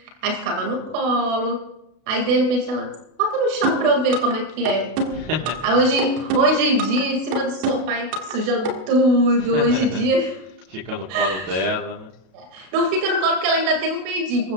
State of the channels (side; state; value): left; late; 32 ms